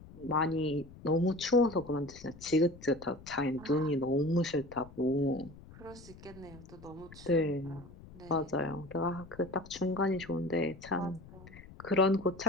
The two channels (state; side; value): noise; left; rumble, 19 dB below the sound